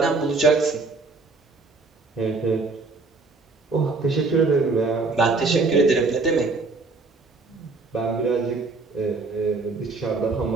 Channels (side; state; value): left; quieter; 3.9 dB